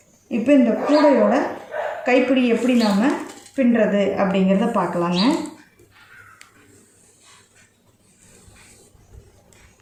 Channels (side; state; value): both; identical; correlation 1.00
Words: இப்போ இந்த கூடையோட கைப்பிடி எப்படி நாம் பின்னுறது அப்படிங்கிறத பார்க்கலாங்க.